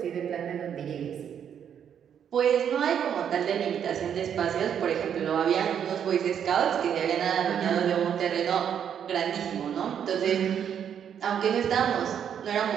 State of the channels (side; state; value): left; quieter; 8.6 dB